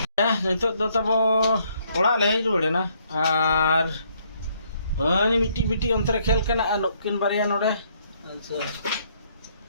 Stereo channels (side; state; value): both; inverted; correlation -0.68